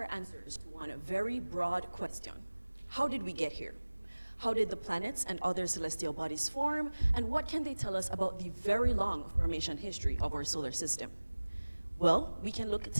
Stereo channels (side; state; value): both; inverted; correlation -1.00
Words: answers to one very broad question. How did we get here? How did the planets and other celestial bodies form, and what can they tell us about the very long formation history of our solar system? Well, we can look